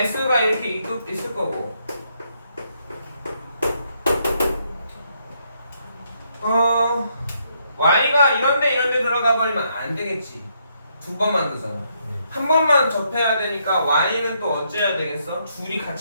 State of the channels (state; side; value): inverted; both; correlation -0.75